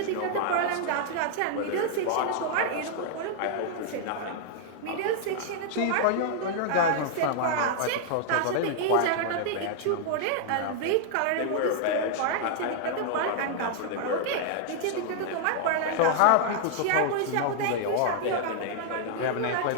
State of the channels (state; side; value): different; both; correlation -0.01